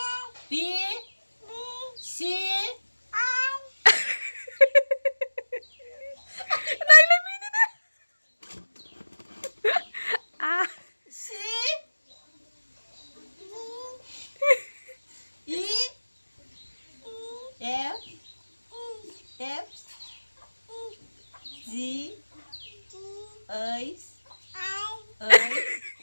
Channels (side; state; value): both; inverted; correlation -1.00